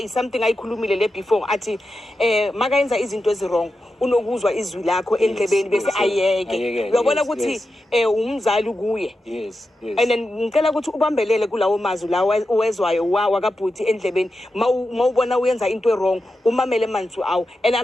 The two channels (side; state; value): both; normal; correlation 0.90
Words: something ayikhulumile le before athi makayenza izinto ezirong unokuzwa izwi lakho endlebeni bese ayeke uyabona ukuthi umzali kuye and then ngicela ukuthi ubambelele kulawo mazwi lawo uwezwayo wakabhuti endlebeni mawubona uyenza into wrong umamele manzi awu and